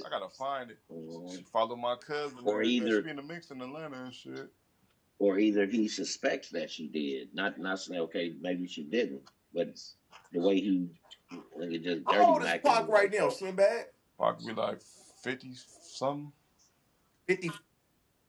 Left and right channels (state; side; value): identical; both; correlation 1.00